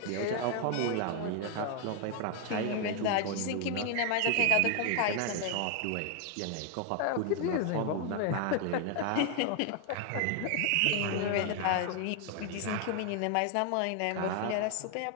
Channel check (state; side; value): different; both; correlation 0.00